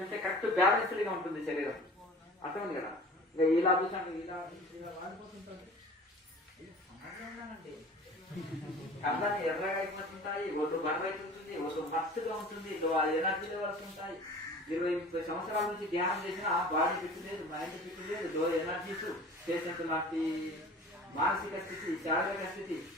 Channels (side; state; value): both; normal; correlation 0.42